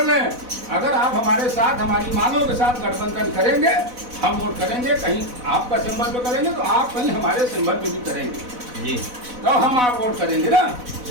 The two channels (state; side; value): late; left; 4.0 ms